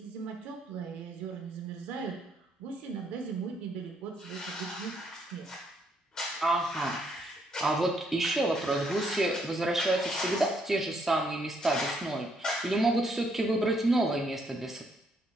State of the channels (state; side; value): normal; both; correlation 0.72